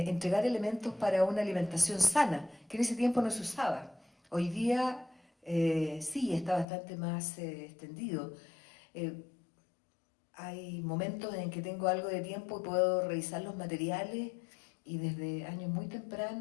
elementos para una alimentación sana, que en ese tiempo no se usaba. Hoy día sí, está bastante más extendido. Hay momentos en que tengo algo de tiempo y puedo revisar los materiales, y desde años muy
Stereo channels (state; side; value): drops out; right; at 6.7 s